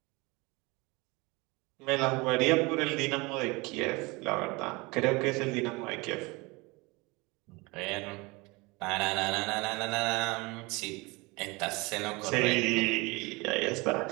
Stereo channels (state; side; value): quieter; left; 25.1 dB